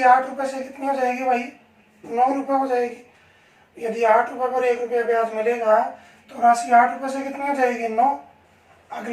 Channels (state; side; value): identical; both; correlation 1.00